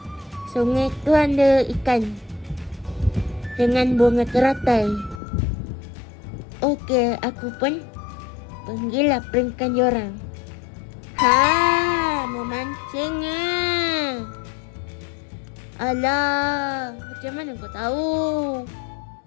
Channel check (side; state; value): right; drops out; at 5.2 s